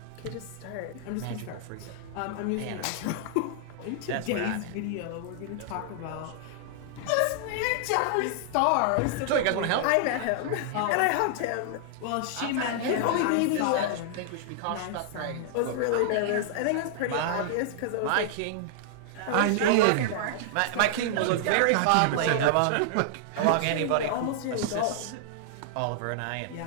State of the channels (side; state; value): both; different; correlation -0.01